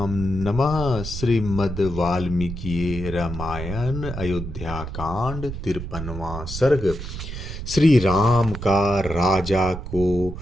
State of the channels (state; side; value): noise; right; rumble, 8 dB below the sound